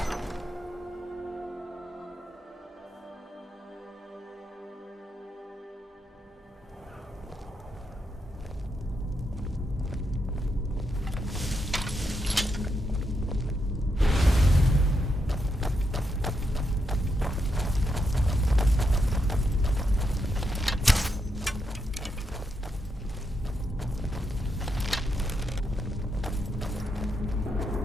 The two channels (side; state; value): both; normal; correlation 0.82